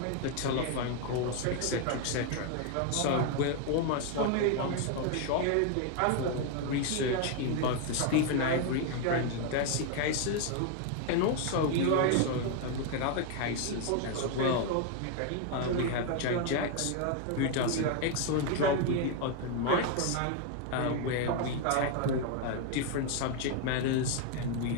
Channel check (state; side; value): different; both; correlation 0.01